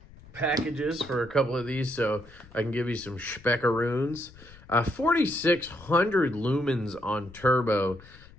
packages for a couple of these, so I can give you some speckaroons. 4,600 lumens on turbo.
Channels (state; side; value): noise; left; rumble, 22 dB below the sound